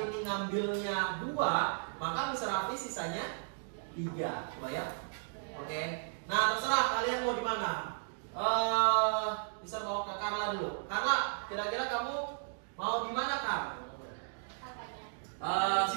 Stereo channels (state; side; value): silent; left; digital silence